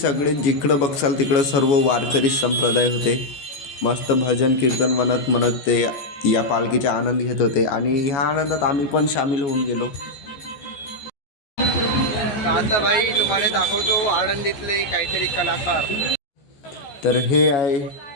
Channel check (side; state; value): right; late; 14 ms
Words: जिकडं बघसाल तिकडं सर्व वारकरी संप्रदाय होते. मस्त भजन कीर्तन म्हणत म्हणत ते या पालखीचा आनंद घेत होते आणि ह्या आनंदात आम्ही पण सामील होऊन गेलो. तर आता भाई तुम्हाला दाखवतो आळंदीतले काहीतरी कलाकार. तर हे आहे